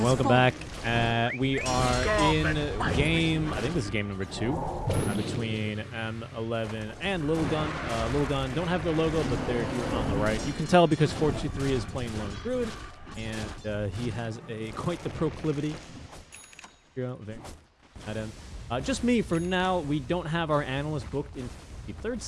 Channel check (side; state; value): both; identical; correlation 1.00